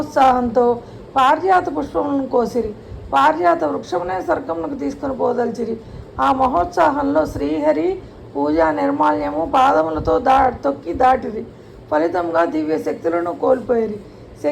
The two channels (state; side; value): identical; both; correlation 1.00